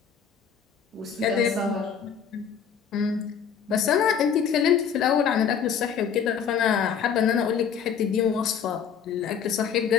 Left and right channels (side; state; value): right; quieter; 7.4 dB